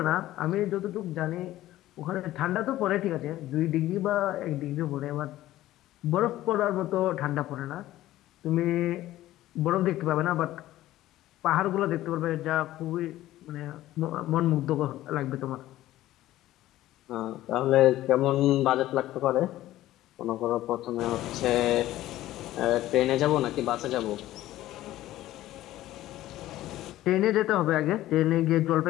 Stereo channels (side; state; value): right; quieter; 14.9 dB